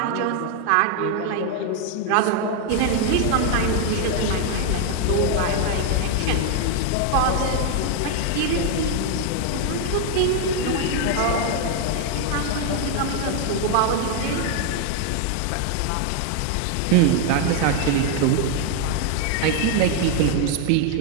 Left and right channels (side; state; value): both; different; correlation 0.00